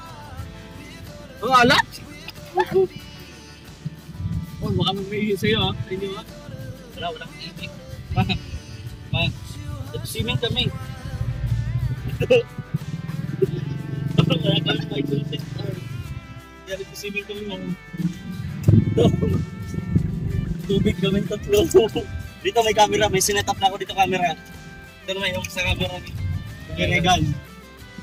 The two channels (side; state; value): both; identical; correlation 1.00